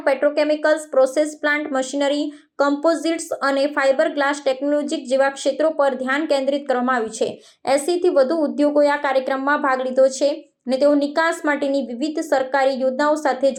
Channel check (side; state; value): both; identical; correlation 1.00